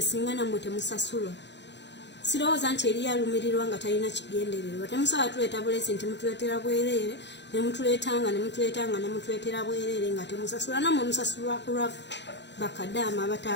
singa nammwe temusasulwa sirowooza nti eri yalumirirwa nga talina kigendererwa temusaba tuleeta bulesi nti mutuleetera bwereere nemutuleetera bwereere nga temusasula nammwe musasulwa ku lwaffe bakadama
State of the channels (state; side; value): late; right; 0.51 ms